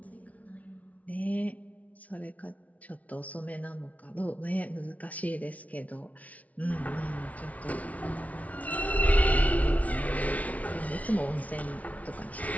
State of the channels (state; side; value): late; right; 0.069 ms